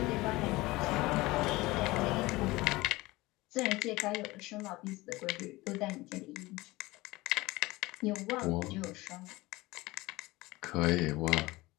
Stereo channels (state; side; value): quieter; right; 20.4 dB